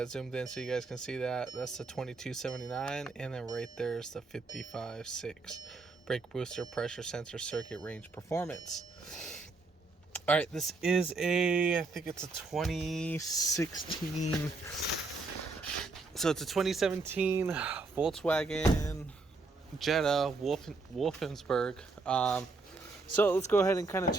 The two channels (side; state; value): left; quieter; 3.7 dB